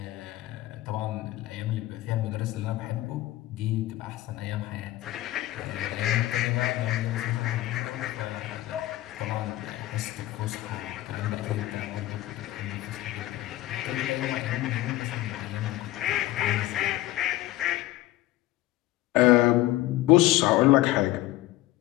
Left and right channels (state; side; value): quieter; right; 16.3 dB